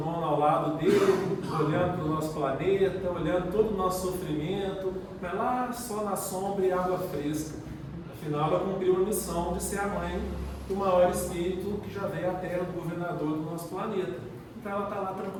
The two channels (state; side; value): identical; both; correlation 1.00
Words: ao lado dele, olhando para o nosso planeta, olhando todo o nosso sofrimento, mas lá só na sombra e água fresca. Afinal, ela cumpriu a missão de ser a mãe do maior espírito que já veio à Terra, do governador do nosso planeta. Então ela está lá